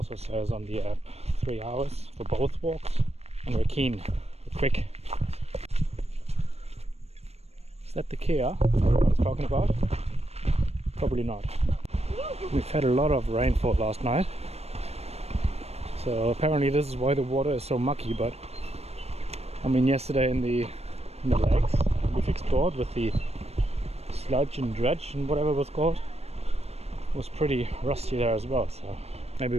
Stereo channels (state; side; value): late; left; 0.31 ms